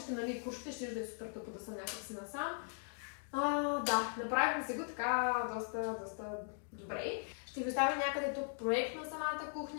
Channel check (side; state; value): right; silent; 52 dB below the other